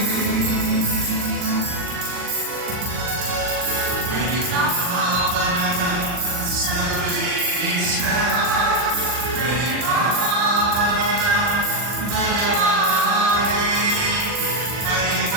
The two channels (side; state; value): left; late; 40 ms